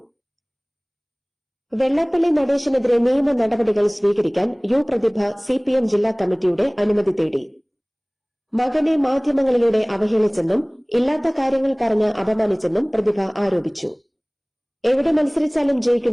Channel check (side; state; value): both; identical; correlation 1.00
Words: വെള്ളാപ്പള്ളി നടേശനെതിരെ നിയമ നടപടികൾ സ്വീകരിക്കാൻ യു പ്രതിഭ CPM ജില്ലാ കമ്മിറ്റിയുടെ അനുമതി തേടി. മകനെ മാധ്യമങ്ങളിലൂടെ അവഹേളിച്ചെന്നും ഇല്ലാത്ത കാര്യങ്ങൾ പറഞ്ഞ് അപമാനിച്ചെന്നും പ്രതിഭ ആരോപിച്ചു. എവിടെ മത്സരിച്ചാലും